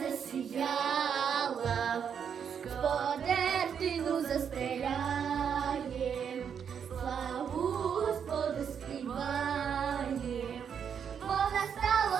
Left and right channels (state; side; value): quieter; left; 7.6 dB